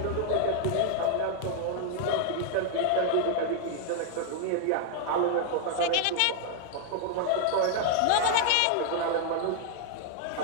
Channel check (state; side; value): different; both; correlation 0.00